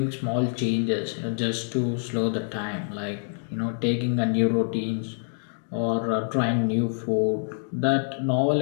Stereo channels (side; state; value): right; silent; digital silence